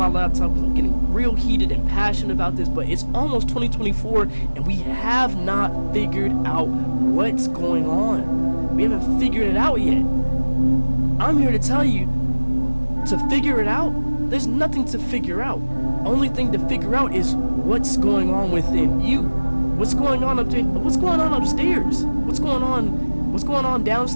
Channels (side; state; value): both; inverted; correlation -1.00